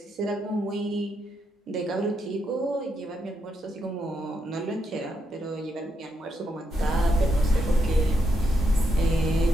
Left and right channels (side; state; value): both; normal; correlation 0.80